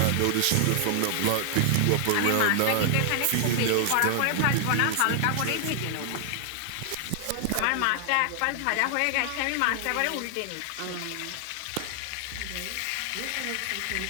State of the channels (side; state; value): both; different; correlation 0.00